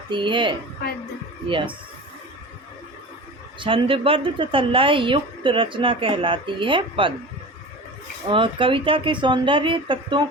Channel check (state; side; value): normal; both; correlation 0.34